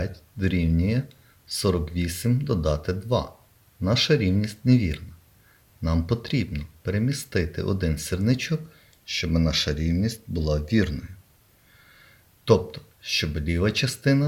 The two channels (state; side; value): identical; both; correlation 1.00